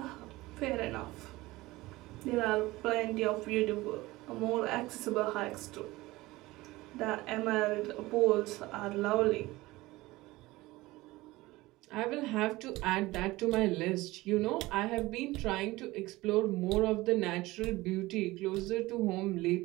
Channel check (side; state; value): left; quieter; 19.6 dB